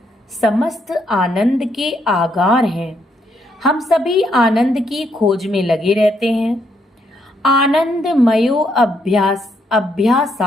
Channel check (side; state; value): both; normal; correlation 0.75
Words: समस्त आनंद के आगार हैं। हम सभी आनंद की खोज में लगे रहते हैं। आनंदमयो